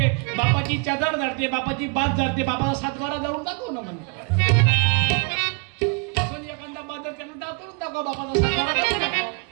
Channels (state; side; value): quieter; left; 33.9 dB